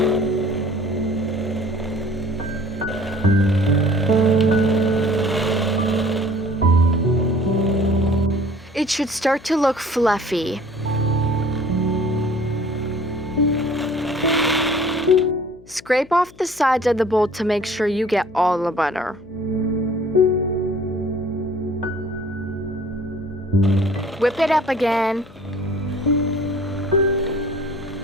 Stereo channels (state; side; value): noise; left; hum, 25 dB below the sound